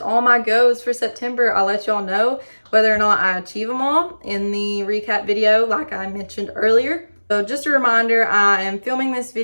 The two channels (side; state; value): both; inverted; correlation -1.00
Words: my goes for September. I'll let y'all know whether or not I achieve them all in the recap video like I mentioned earlier. So just a reminder, I am filming this